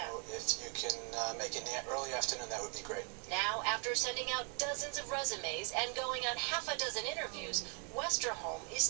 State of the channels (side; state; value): left; quieter; 36.2 dB